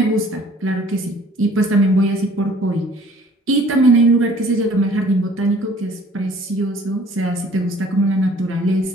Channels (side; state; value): both; normal; correlation 0.54